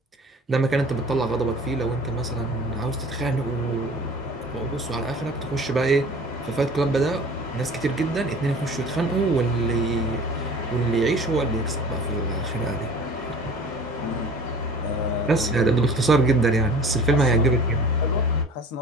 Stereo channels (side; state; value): both; normal; correlation 0.44